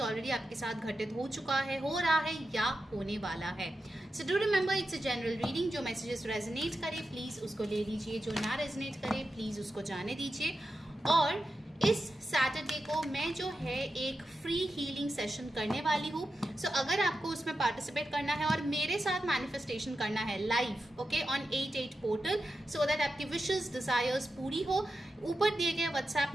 ऑलरेडी आपके साथ घटित हो चुका है, हो रहा है या होने वाला है। So do remember it's a general reading. जो मैसेजेस रेजोनेट करे प्लीज़ उसको ले लीजिए, जो ना रेजोनेट करे प्लीज़ उसको जाने दीजिए। और इस सैटरडे को मैं जो है एक फ्री हीलिंग सेशन करने वाली हूँ। सो अगर आपको उसमें पार्टिसिपेट करना है और मेरे साथ मैनिफेस्टेशन करना है live, okay, on 88 portal, so that आपकी विशेस डिजायर्स पूरी हो, ऊपर दिए गए व्हाट्सएप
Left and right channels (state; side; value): normal; both; correlation 0.90